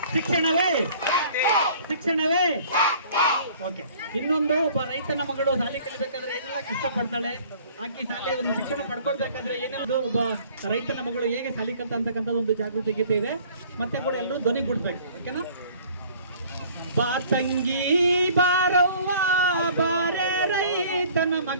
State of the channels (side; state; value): both; inverted; correlation -0.52